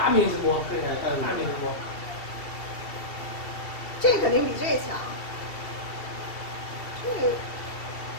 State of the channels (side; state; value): right; late; 2.7 ms